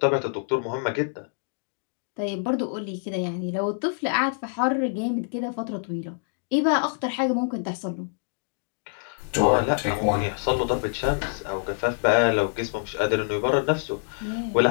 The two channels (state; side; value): silent; right; digital silence